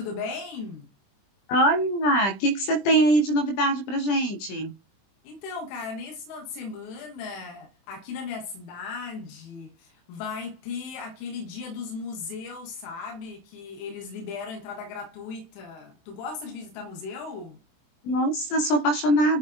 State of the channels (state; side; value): late; right; 20 ms